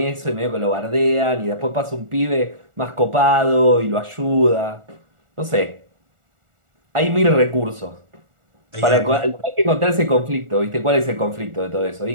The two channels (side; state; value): left; late; 1.4 ms